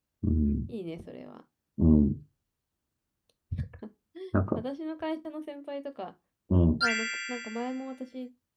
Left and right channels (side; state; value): both; identical; correlation 1.00